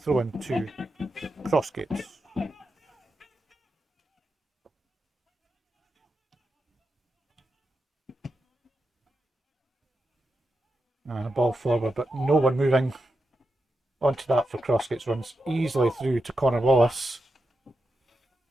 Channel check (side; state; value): both; normal; correlation 0.88